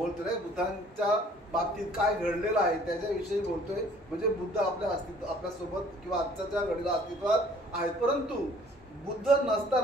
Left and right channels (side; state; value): both; normal; correlation 0.55